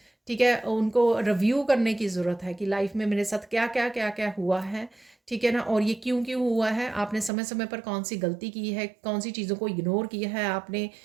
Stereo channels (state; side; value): drops out; left; at 7.3 s